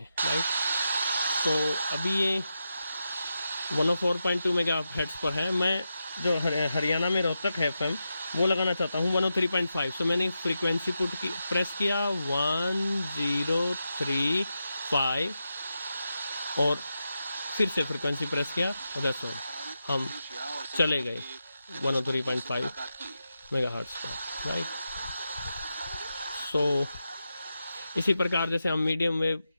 राइट। तो अभी ये 104.2 मेगाहर्ट्ज़ पर है। मैं जो हरियाणा में रोहतक है FM वो लगाना चाहता हूँ 103.5। सो मैंने फ्रीक्वेंसी प्रेस किया 1035 और फिर से फ्रीक्वेंसी प्रेस किया और दैट्स ऑल, हम चले गए 103.5 मेगाहर्ट्ज़ पर, राइट। सो इसी प्रकार जैसे हम मीडियम वेव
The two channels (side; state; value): both; inverted; correlation -0.88